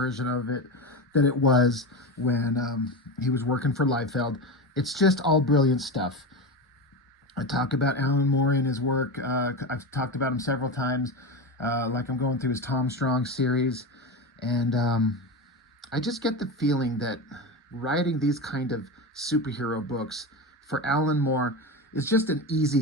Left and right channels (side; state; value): both; normal; correlation 0.21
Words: of it that it was when he was working for Liefeld. It's just all brilliant stuff. I talk about Alan Moore and his work. I've talked about him several times, like I'm going through his Tom Strong series. And I just get the feeling that writing these kind of superhero books for Alan Moore is just an easy